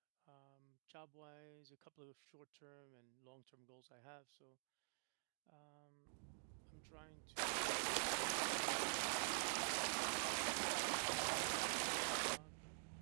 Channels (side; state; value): left; silent; digital silence